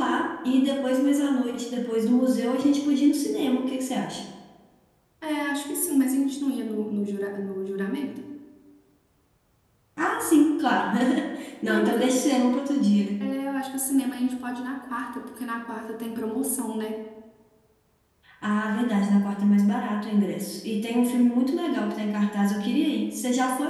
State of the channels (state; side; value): identical; both; correlation 1.00